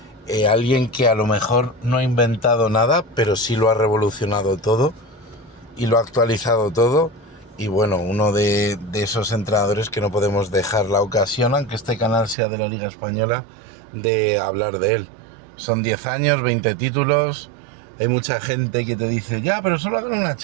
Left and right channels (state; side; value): drops out; left; at 12.4 s